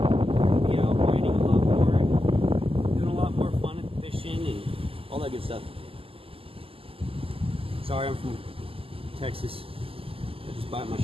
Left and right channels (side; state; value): left; late; 0.27 ms